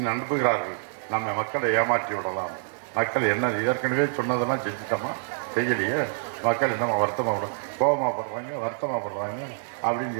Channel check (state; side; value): silent; left; 61 dB below the other